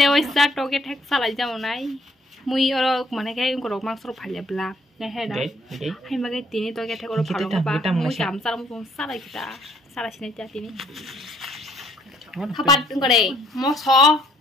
sa to cái thách sa lại ra này. Mui ở mà này cái có mang số phải là bla. Cái hay đó. Hay mà cái tin to cái thách có phản nó ba. Mui cảm sa nó xuống sa lại kita. Sa lại xin cha tin. Kapan có đây? Mo so.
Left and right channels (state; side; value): normal; both; correlation 0.65